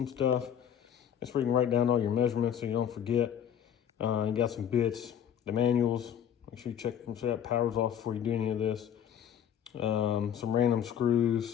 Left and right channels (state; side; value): quieter; right; 9.2 dB